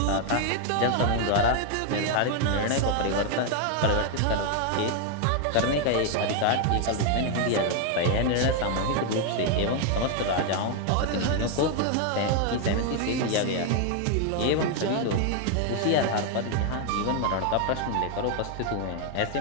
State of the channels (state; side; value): different; both; correlation 0.00